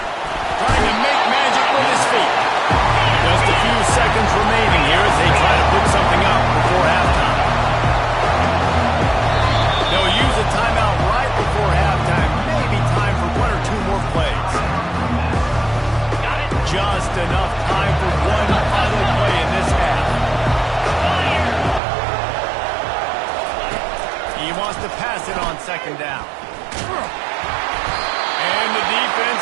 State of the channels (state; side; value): drops out; left; at 21.8 s